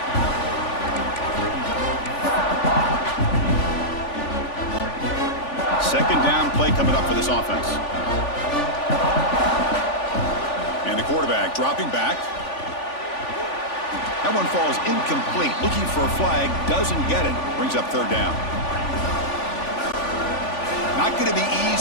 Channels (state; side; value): late; right; 3.5 ms